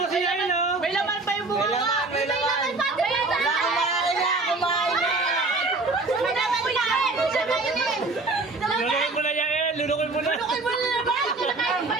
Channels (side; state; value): left; quieter; 3.5 dB